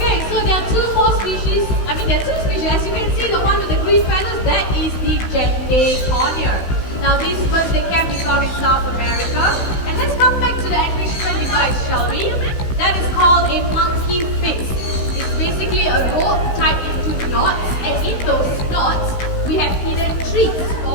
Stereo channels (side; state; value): right; late; 16 ms